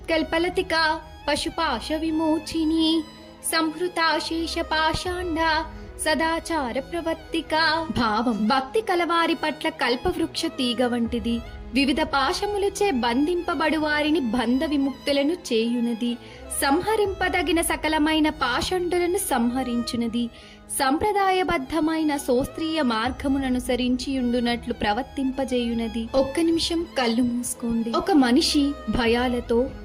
పశుపాశ విమోచిని సంహృతాశేష పాషాండ సదాచార ప్రవర్తిక. భావం: భక్తి కలవారి పట్ల కల్పవృక్ష తీగ వంటిది, వివిధ పాశములచే బంధింపబడు వారిని బంధ విముక్తులను చేయునది, సంహరింపదగిన సకలమైన పాషండులను సంహరించునది, సంప్రదాయబద్ధమైన శాస్త్రీయ మార్గముననుసరించియుండునట్లు ప్రవర్తింపజేయునది. ఒక్క నిమిషం కళ్ళు మూసుకోండి. ఒక మనిషి భయాలతో,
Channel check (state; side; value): identical; both; correlation 1.00